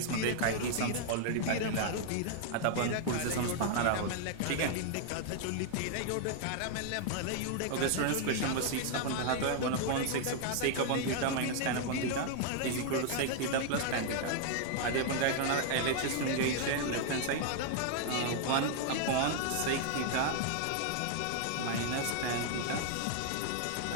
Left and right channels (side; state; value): both; different; correlation 0.00